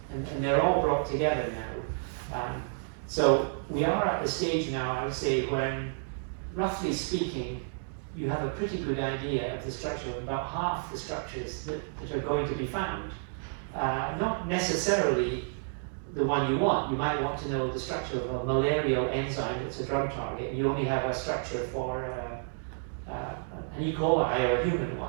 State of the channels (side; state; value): left; silent; digital silence